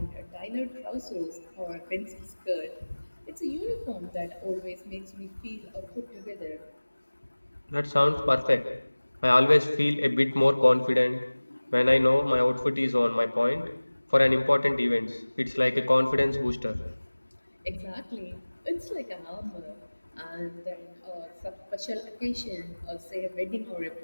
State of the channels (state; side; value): inverted; both; correlation -1.00